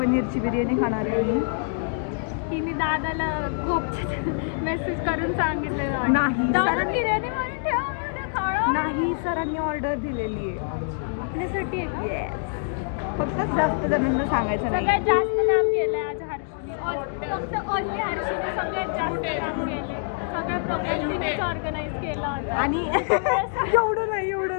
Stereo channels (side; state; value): right; silent; digital silence